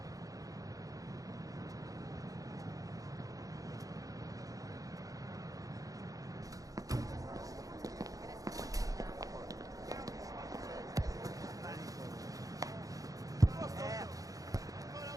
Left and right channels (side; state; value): left; late; 0.17 ms